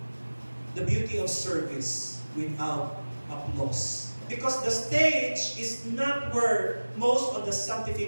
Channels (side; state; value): both; inverted; correlation -1.00